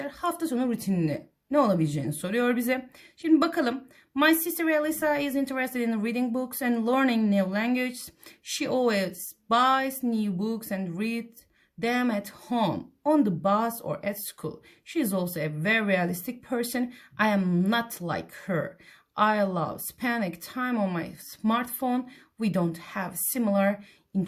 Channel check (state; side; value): identical; both; correlation 1.00